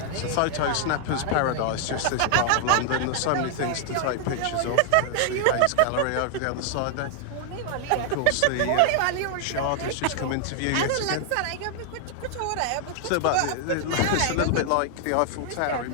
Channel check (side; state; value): both; different; correlation 0.00